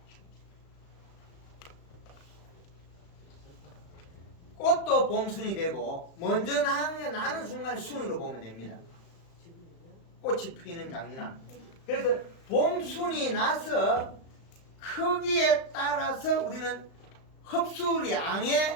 꽃도 봄순이 되고 먼저 나는 순간에 순으로 보면 됩니다. 꽃이 피는 장미나. 그래서 봄순이 나서 크기에 따라서 우리는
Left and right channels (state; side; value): late; right; 35 ms